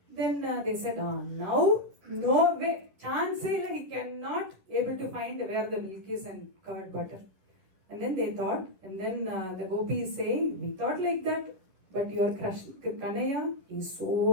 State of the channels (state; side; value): late; left; 11 ms